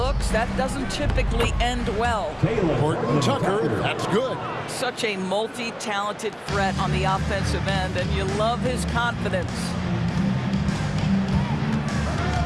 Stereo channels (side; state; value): both; identical; correlation 1.00